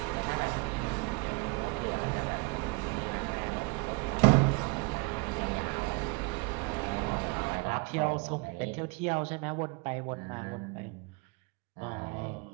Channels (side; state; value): left; quieter; 29.0 dB